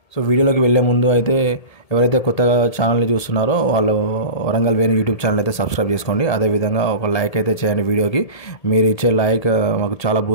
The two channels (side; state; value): right; late; 1.8 ms